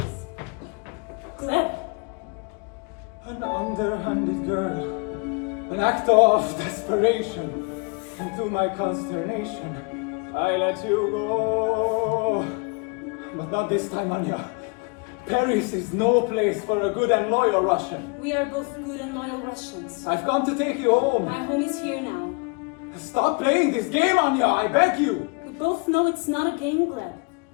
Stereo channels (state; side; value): quieter; right; 32.5 dB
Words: Gleb. An underhanded girl, an act of desperation, and to my consternation, I let you go. But not this time, Anya. Paris is no place for a good and loyal Russian. We are both good and loyal Russians. I've come to take you home. My home is here now. Stop playing this game, Anya, I beg you. We both know it's not a game, Gleb.